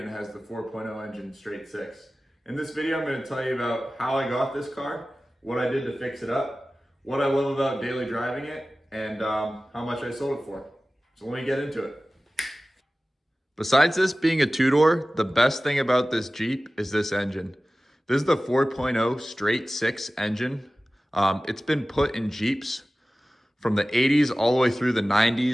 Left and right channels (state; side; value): normal; both; correlation 0.96